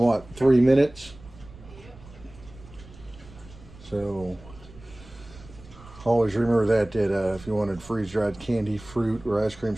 3 minutes? So always remember that if you wanted freeze-dried candy, fruit, or ice cream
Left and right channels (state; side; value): noise; right; rumble, 20 dB below the sound